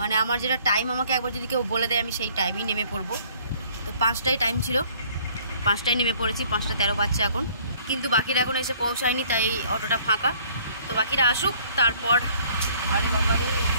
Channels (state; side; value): inverted; both; correlation -0.58